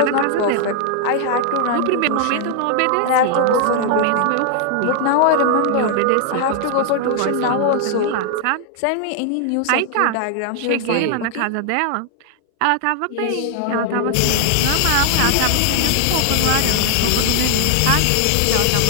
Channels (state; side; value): different; both; correlation 0.00